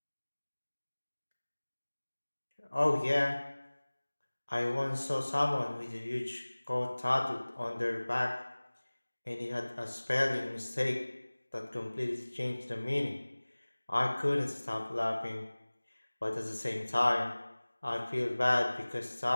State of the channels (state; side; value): inverted; both; correlation -1.00